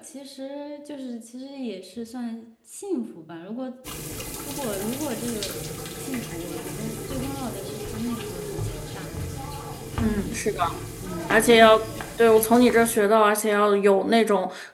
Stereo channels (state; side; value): identical; both; correlation 1.00